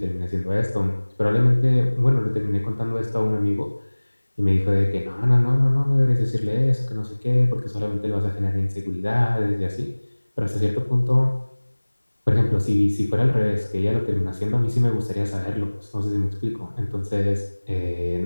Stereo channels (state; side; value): inverted; both; correlation -1.00